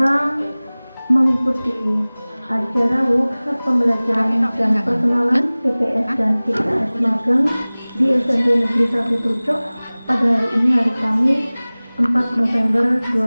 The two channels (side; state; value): both; inverted; correlation -0.99